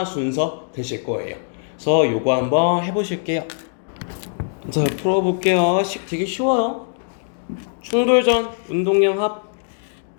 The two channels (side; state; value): right; silent; digital silence